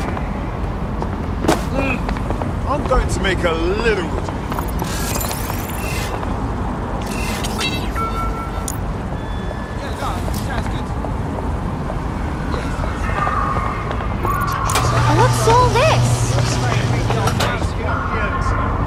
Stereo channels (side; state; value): both; identical; correlation 1.00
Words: I'm going to make a little. What's all this?